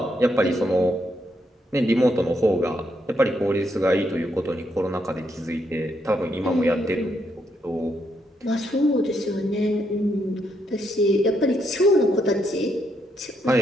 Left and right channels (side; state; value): both; normal; correlation 0.77